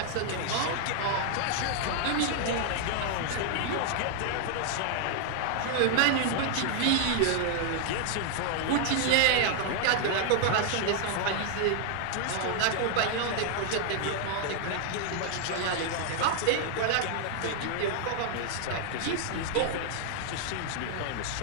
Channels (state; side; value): different; both; correlation 0.00